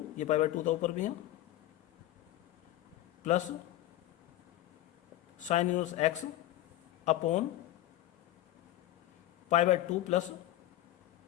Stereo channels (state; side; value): quieter; right; 14.3 dB